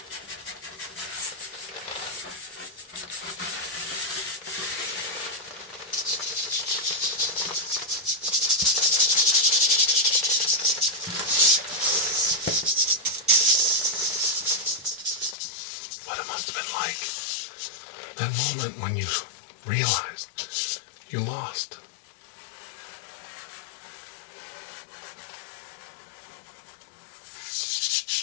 What it must have been like. That moment when you realized you lost.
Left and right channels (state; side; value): drops out; right; at 15.4 s